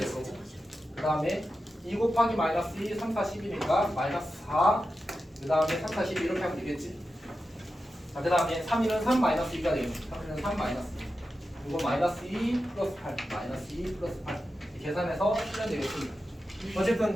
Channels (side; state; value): both; normal; correlation 0.91